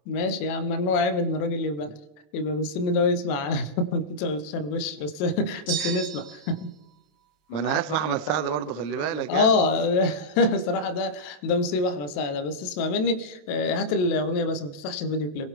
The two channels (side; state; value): right; late; 27 ms